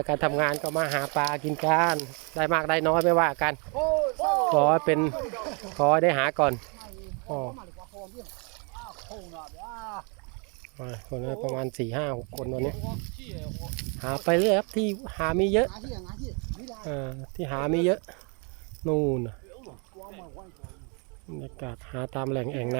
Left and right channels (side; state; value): left; quieter; 35.0 dB